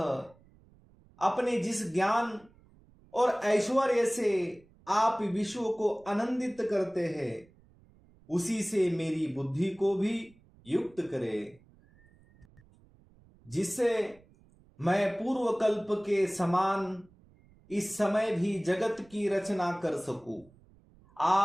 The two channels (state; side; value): noise; right; rumble, 28 dB below the sound